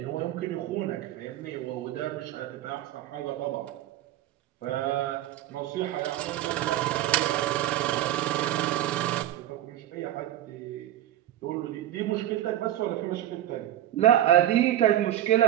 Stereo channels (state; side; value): quieter; left; 12.9 dB